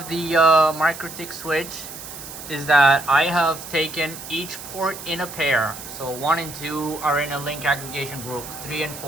the Mikrotik switch is that I have taken each port in a pair. So 1 and 2 are in a link aggregation group, 3 and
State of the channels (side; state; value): right; noise; hiss, 12 dB below the sound